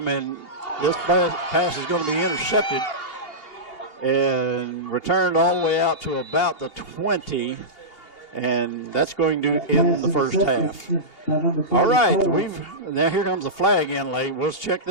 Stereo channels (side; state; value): right; late; 2.8 ms